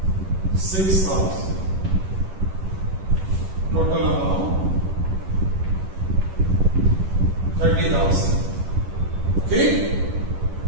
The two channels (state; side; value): late; left; 11 ms